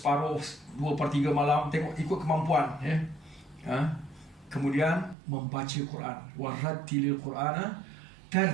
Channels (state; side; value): drops out; left; at 5.2 s